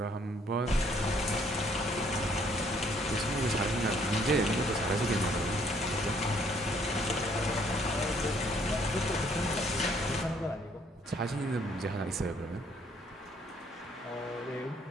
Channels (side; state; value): both; normal; correlation 0.65